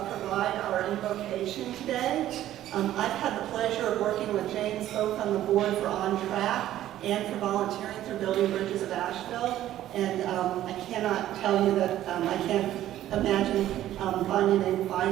provide our invocation today. I've had the pleasure of working with James both on the board for Ontrack and for volunteering through Building Bridges of Asheville. And I cannot tell you that I can't imagine finding a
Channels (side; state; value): left; quieter; 13.0 dB